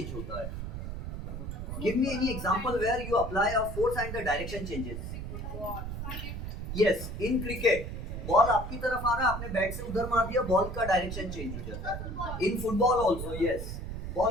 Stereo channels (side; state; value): right; noise; rumble, 6 dB below the sound